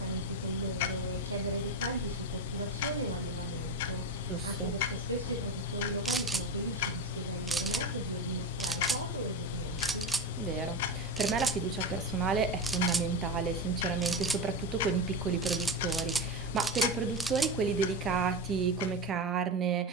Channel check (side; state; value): both; normal; correlation 0.19